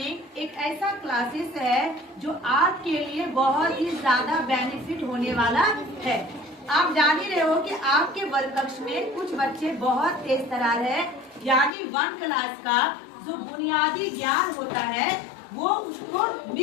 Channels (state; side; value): drops out; right; at 11.7 s